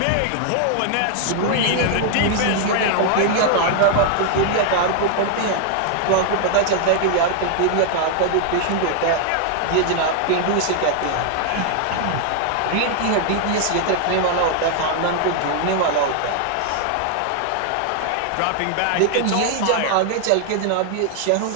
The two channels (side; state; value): both; different; correlation 0.00